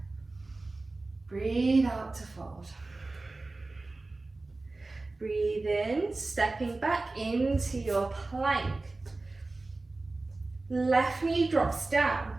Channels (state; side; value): quieter; left; 3.2 dB